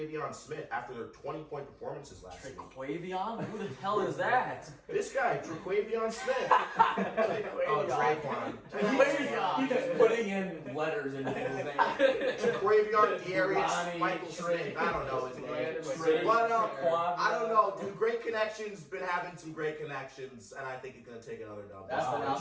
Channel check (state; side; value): identical; both; correlation 1.00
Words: Smith after their 20-point performances last week. Traquavion? Who the hell is that? This guy, Traquavion Smith. Oh, Traquan. He's just putting in letters into his name. Traquavion Darius Ronnie, Michael Smith. I don't know his name. Trey, But, Quad- I don't know, dude. Great Connections been having some great connections, and I think he's gonna take another dub. That's the Wow. Did